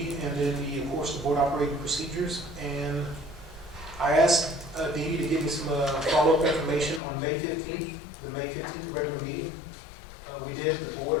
and then of course the board operating procedures. And I asked Dee to give me some follow-up information on May 15th, the May 15th regular meeting. We did, the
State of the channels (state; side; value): drops out; right; at 7.0 s